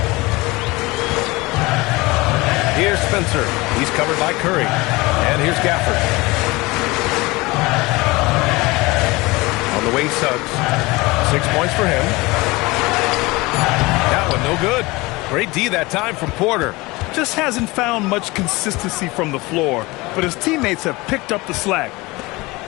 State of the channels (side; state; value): right; quieter; 22.6 dB